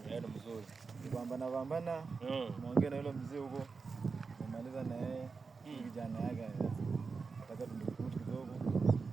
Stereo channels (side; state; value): left; quieter; 4.7 dB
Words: Ndio mzuri. Pambana. Muongee na yule mzee huko. Kumaliza na yeye. Kijana yake. Nataka tumdukute kidogo.